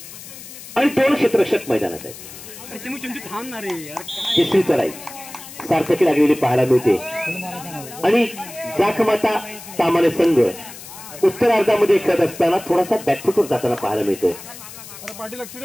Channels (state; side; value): noise; left; hiss, 15 dB below the sound